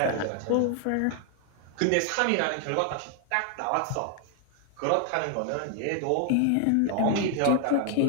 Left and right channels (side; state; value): both; different; correlation 0.00